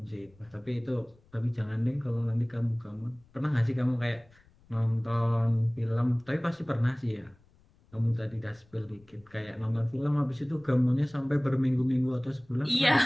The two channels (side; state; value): left; noise; rumble, 30 dB below the sound